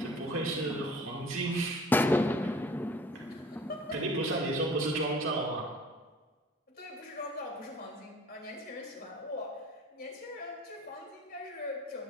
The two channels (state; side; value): normal; both; correlation 0.48